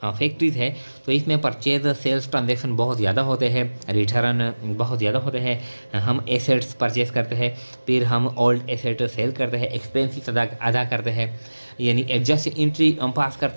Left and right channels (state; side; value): inverted; both; correlation -1.00